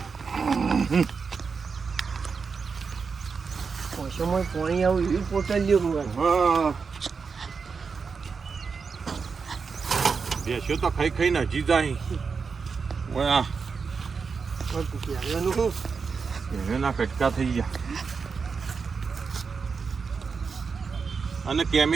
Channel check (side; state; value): left; quieter; 5.3 dB